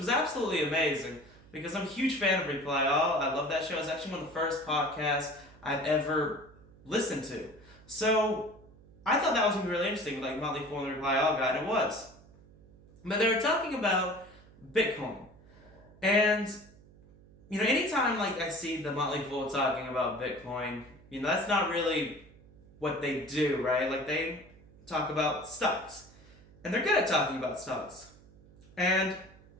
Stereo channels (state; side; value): noise; right; hum, 24 dB below the sound